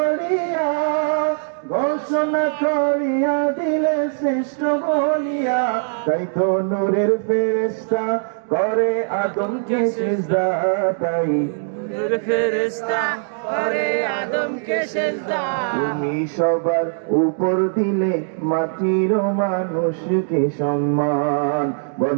ঘোষণা করিয়া দিলে শ্রেষ্ঠ বলিয়া তাই তো নূরের ফেরেশতা করে আদমকে সিজদা তাই নূরের ফেরেশতা করে আদমকে সেজদা তুমি সবার উপর দিলে মাটির মানুষকে সম্মান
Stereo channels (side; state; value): left; silent; digital silence